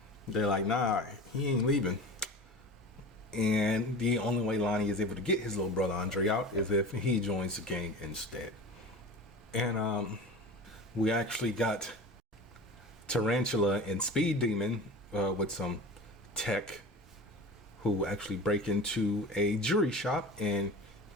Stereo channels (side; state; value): both; normal; correlation 0.35